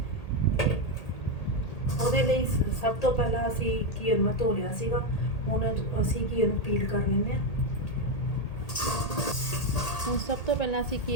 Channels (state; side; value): late; right; 1.8 ms